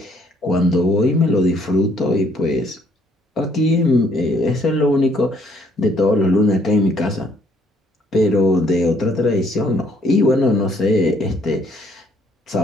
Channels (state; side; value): normal; both; correlation 0.65